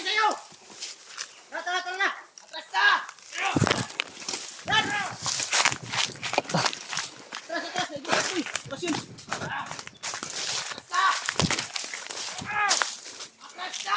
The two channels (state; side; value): identical; both; correlation 1.00